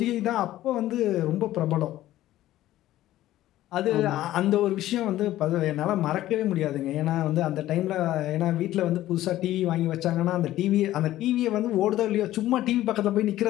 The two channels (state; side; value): quieter; right; 14.4 dB